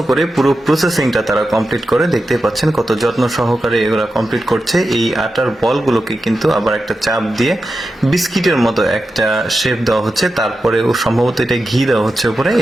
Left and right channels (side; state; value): both; normal; correlation 0.90